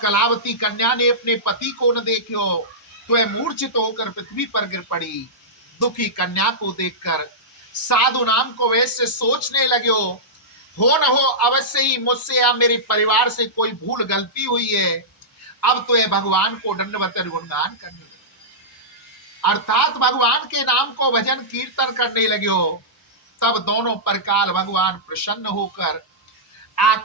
कन्या ने अपने पति को न देखो तो वह मूर्छित होकर पृथ्वी पर गिर पड़ी। दुखी कन्या को देखकर साधु नाम को वैसे सोचने लगे, हो न हो अवश्य ही मुझसे या मेरे परिवार से कोई भूल गलती हुई है, अब तो यह भगवान को दंडवत गुणगान करने लगे, अर्थात भगवान के नाम को भजन कीर्तन करने लगे। तब दोनों परकाल भगवान प्रसन्न होकर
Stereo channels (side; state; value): both; normal; correlation -0.15